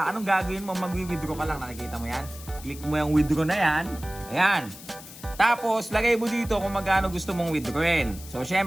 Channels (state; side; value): noise; left; hiss, 16 dB below the sound